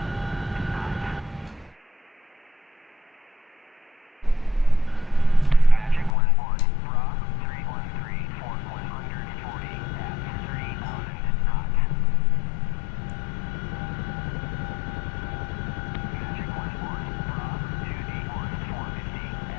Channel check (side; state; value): right; drops out; at 6.2 s